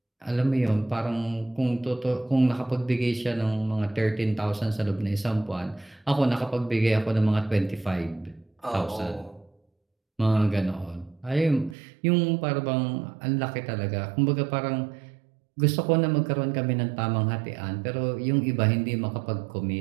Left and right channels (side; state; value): left; drops out; at 11.8 s